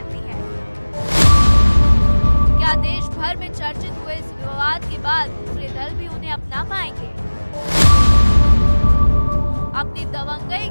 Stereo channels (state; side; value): inverted; both; correlation -1.00